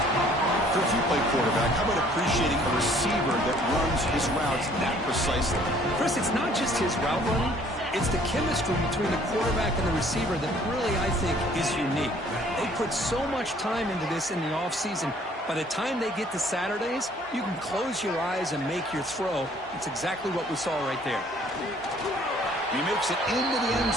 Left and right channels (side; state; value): both; normal; correlation 0.58